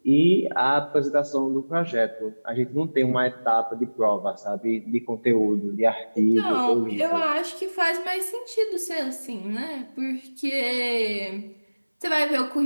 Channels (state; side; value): inverted; both; correlation -1.00